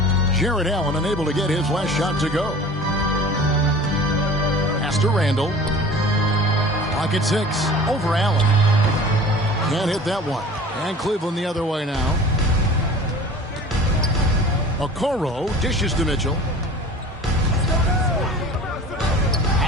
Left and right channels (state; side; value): normal; both; correlation 0.42